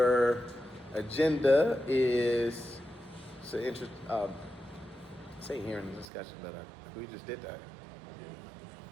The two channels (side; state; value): left; drops out; at 6.1 s